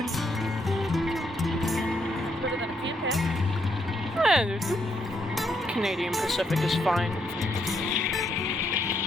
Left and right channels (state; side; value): normal; both; correlation 0.76